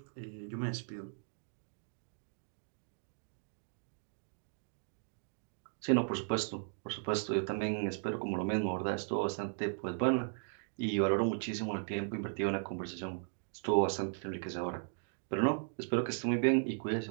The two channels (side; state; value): left; silent; digital silence